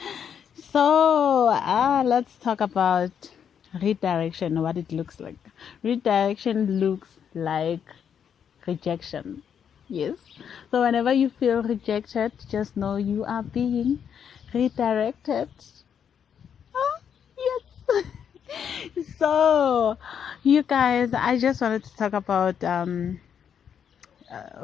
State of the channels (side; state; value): right; quieter; 8.0 dB